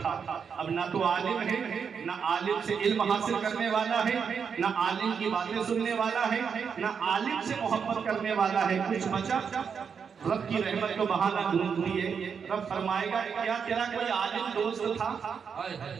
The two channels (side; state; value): left; quieter; 6.5 dB